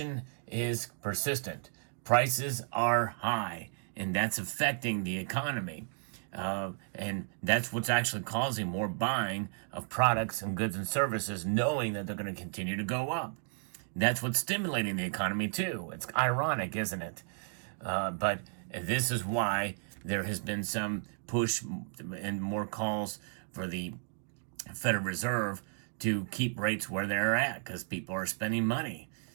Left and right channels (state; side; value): silent; left; 55 dB below the other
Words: is persistent. Prices are high, and that's affecting the economy. And that's what's actually causing more buying of products and goods and services, knowing that they're going to continue to go up. That's what's stimulating the economy too. It's ironic, isn't it? But this is why there has been some push and more calls for the Federal Reserve to keep rates where they're at, because people are spending money.